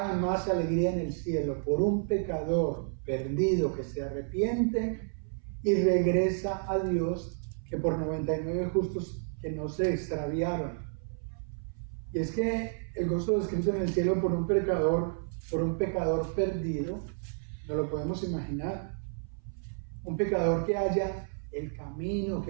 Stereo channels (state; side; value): silent; left; 57 dB below the other